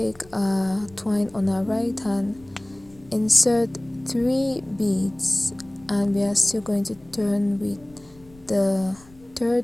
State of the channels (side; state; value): left; noise; rumble, 26 dB below the sound